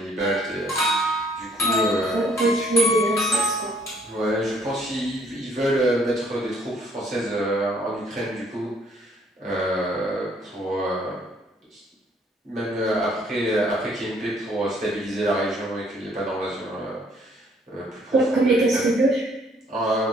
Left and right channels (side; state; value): both; normal; correlation 0.63